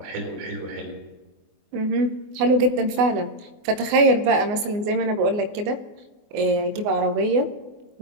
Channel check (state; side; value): late; left; 24 ms